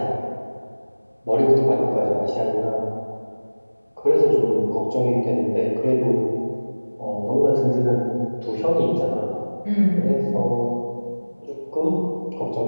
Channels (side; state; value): both; inverted; correlation -1.00